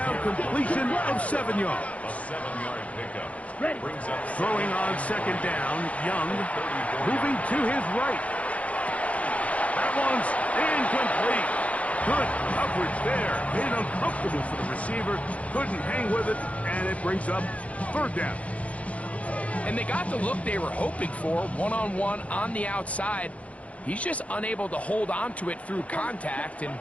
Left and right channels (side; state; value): right; late; 0.065 ms